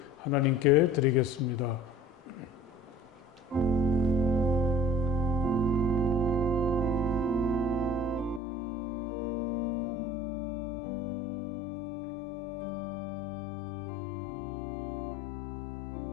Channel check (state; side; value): drops out; right; at 8.4 s